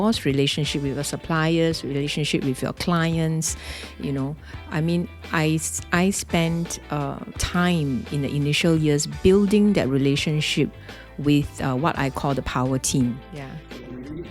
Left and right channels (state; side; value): identical; both; correlation 1.00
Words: relationship with your suppliers, relationship with your clients. I spent time in the initial years building that relationship with what I call the power team. Yeah. So